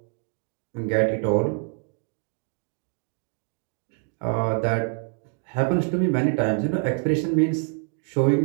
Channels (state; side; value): quieter; left; 39.3 dB